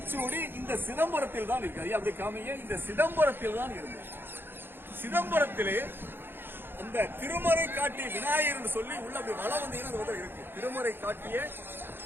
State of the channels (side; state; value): left; late; 0.10 ms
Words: இந்த சிதம்பரத்தில் தான் இருக்கு. அப்படி காமிங்க, இந்த சிதம்பரத்தில் தான் இருந்தது. சிதம்பரத்திலே இந்த திருமறை காட்டிய விநாயகர் என்று சொல்லி உள்ள அப்படி வளம் வந்தீங்கன்னா இருக்கு. திருமறை காட்டிய